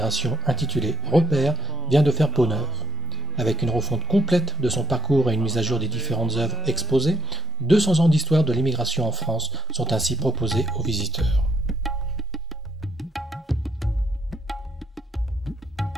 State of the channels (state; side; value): normal; both; correlation 0.90